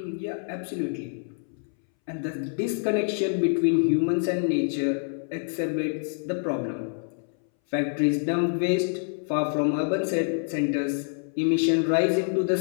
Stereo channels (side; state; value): right; silent; 61 dB below the other